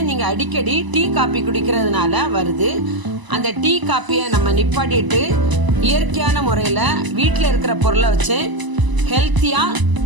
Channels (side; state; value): left; late; 1.0 ms